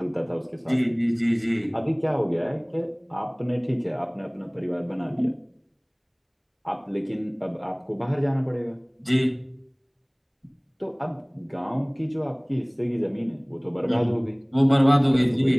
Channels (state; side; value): identical; both; correlation 1.00